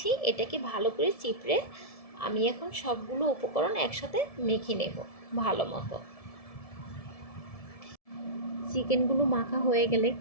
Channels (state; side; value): late; right; 1.7 ms